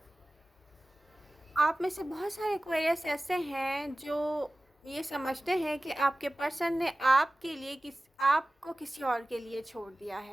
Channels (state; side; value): normal; both; correlation 0.97